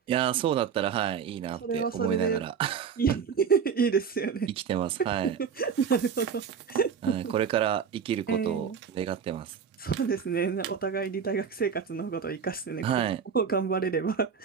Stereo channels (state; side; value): quieter; left; 6.9 dB